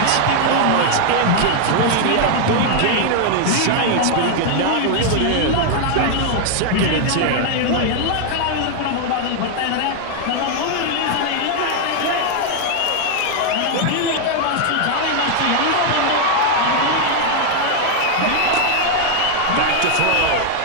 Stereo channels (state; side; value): different; both; correlation 0.00